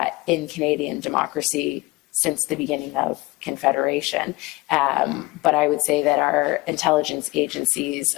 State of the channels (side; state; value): right; quieter; 22.4 dB